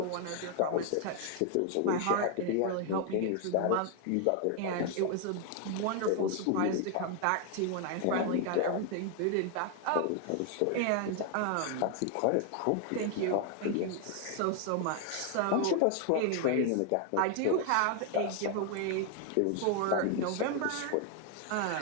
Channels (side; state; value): both; different; correlation 0.00